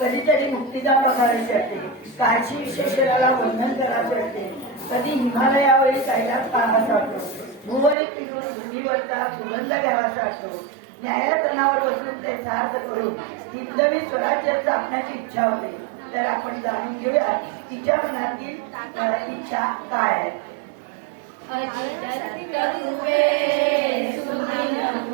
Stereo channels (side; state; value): left; drops out; at 8.0 s